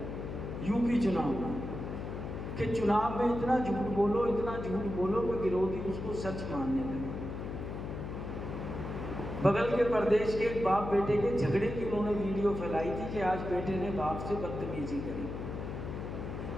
यूपी चुनाव में कि चुनाव में इतना झूठ बोलो, इतना झूठ बोलो कि विरोधी उसको सच मानने लगे। बगल के प्रदेश के एक बाप बेटे के झगड़े की उन्होंने वीडियो फैलाई थी कि आज बेटे ने बाप से बदतमीजी करी,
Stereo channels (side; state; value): left; noise; hum, 6 dB below the sound